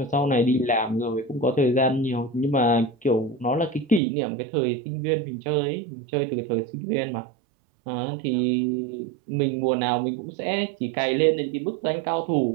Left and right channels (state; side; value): drops out; left; at 4.0 s